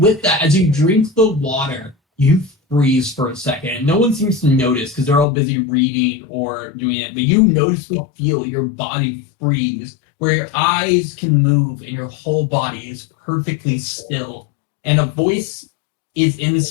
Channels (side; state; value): right; drops out; at 5.2 s